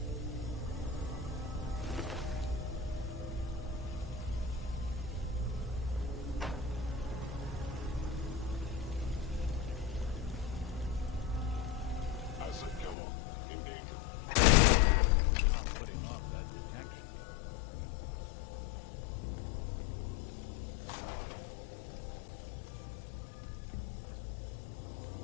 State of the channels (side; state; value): right; drops out; at 13.0 s